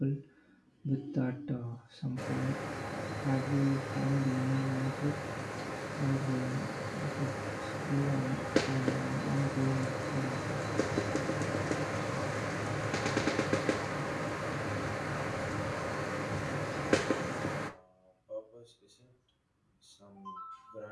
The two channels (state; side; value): identical; both; correlation 1.00